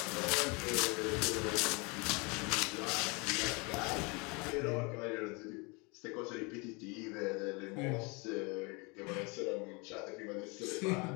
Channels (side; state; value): right; quieter; 29.2 dB